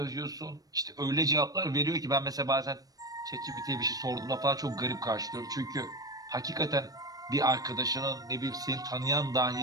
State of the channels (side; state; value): left; late; 0.18 ms